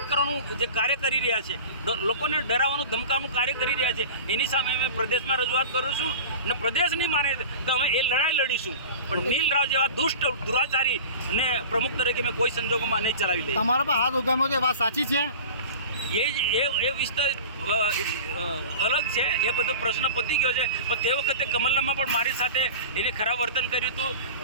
કરવાનું જે કાર્ય કરી રહ્યા છે, લોકોને ડરાવવાનું ધમકાવવાનું કાર્ય કરી રહ્યા છે, એની સામે અમે પ્રદેશમાં રજૂઆત કરું છું અને પ્રદેશ નહીં માને તો અમે એ લડાઈ લડીશું, પણ નીલ રાવ જેવા દુષ્ટ દુરાચારી ને પ્રમુખ તરીકે મેં કોઈ સંજોગોમાં નહીં ચલાવી લઈએ. તમારા પર હાથ ઉગામ્યો છે, વાત સાચી છે? એ વિસ્તાર અલગ છે, એ બધો પ્રશ્ન પતી ગયો છે. પણ તે વખતે કમલનામાં પણ મારી સાથે એને ખરાબ વર્તન કર્યું હતું,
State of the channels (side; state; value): both; inverted; correlation -0.35